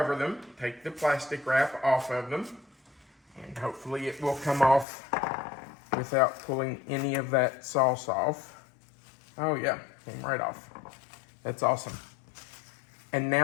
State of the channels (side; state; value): right; drops out; at 4.9 s